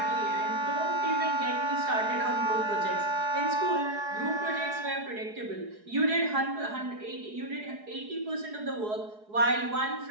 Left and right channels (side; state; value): left; late; 4.8 ms